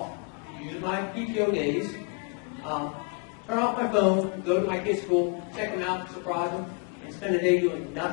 use my PTO days, turn off my phone, go to my kids' school, check them out, surprise them, and spend a day doing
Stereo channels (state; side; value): quieter; right; 33.9 dB